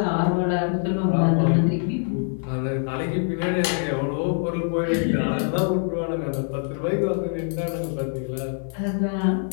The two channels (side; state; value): right; silent; 57 dB below the other